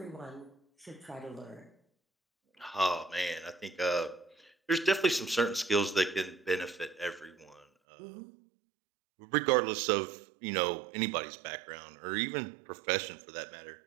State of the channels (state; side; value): drops out; left; at 7.7 s